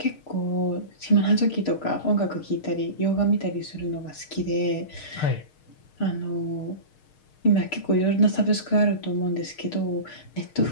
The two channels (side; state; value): right; late; 6.5 ms